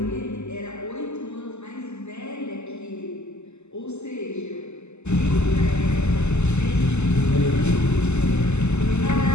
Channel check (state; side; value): late; right; 0.82 ms